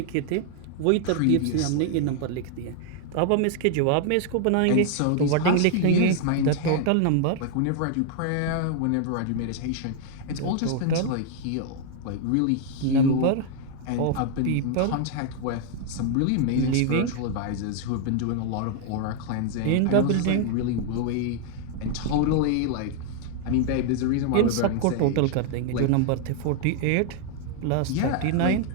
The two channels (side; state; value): both; different; correlation 0.00